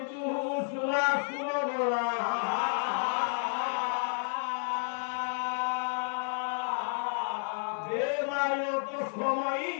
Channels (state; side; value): silent; right; digital silence